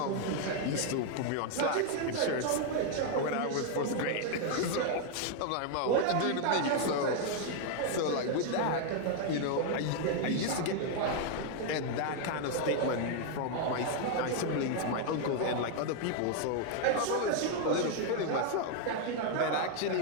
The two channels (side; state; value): both; different; correlation 0.00